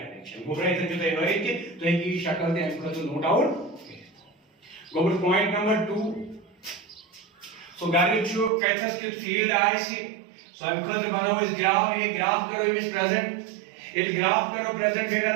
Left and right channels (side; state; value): left; drops out; at 8.5 s